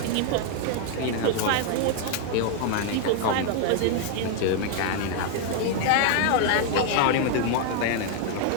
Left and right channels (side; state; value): both; different; correlation 0.00